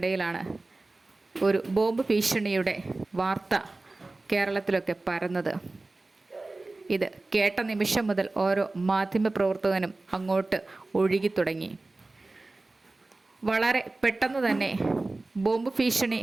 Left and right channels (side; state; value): left; quieter; 3.1 dB